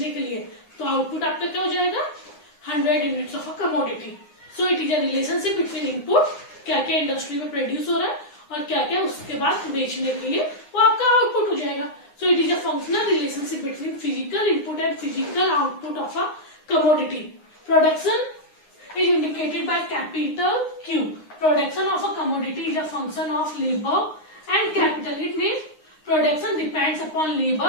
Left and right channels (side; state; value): right; late; 9.7 ms